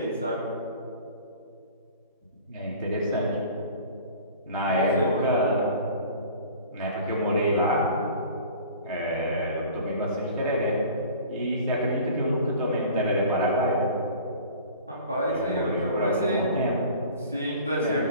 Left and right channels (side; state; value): both; inverted; correlation -0.44